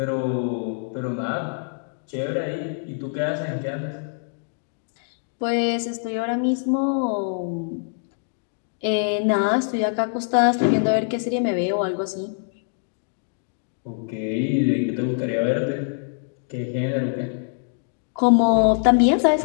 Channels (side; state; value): right; silent; digital silence